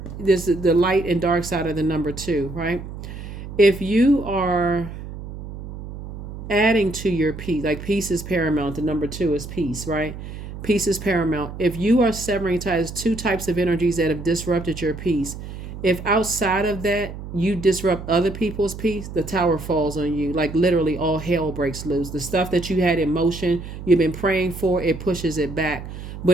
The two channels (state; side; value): noise; right; hum, 10 dB below the sound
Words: there's the light and dark side of the number 2, right? If you are adding to your peace, like peace is paramount, the number 2 is peace, right? Peace is paramount. If you are severing ties, 2 types of energies that have disrupted your peace, if outside of that you disrupt other people's peace, the Tower falls on you. Like literally all hell breaks loose. The stuff that you had in motion, you've been praying for, it pushes it back.